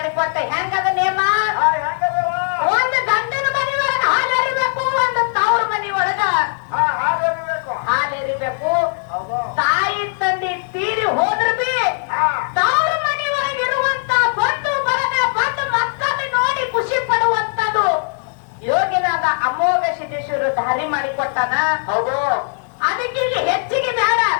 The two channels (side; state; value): right; silent; digital silence